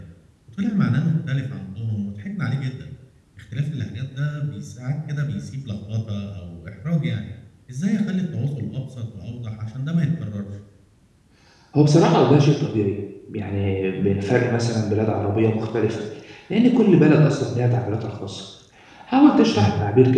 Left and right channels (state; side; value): identical; both; correlation 1.00